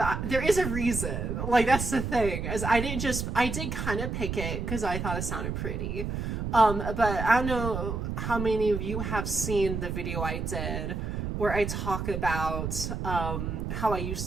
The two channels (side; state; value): right; noise; rumble, 3 dB below the sound